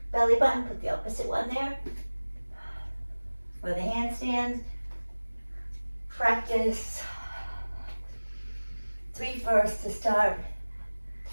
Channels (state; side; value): inverted; both; correlation -1.00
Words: belly button, put the opposite one there. For the handstands, practice 3 first to start.